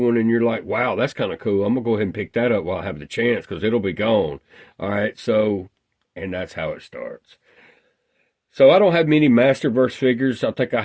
and you're like, wow, that's kind of cool. I'm going to go ahead and pick that up while I have the chance because it'll be gone. All right, so, and that's how it starts. So I don't have many Masterverse figures. I think I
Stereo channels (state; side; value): identical; both; correlation 1.00